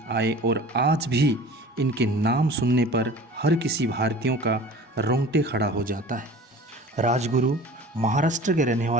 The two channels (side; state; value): both; normal; correlation 0.41